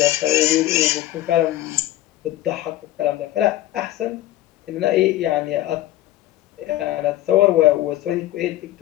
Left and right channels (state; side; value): quieter; right; 14.7 dB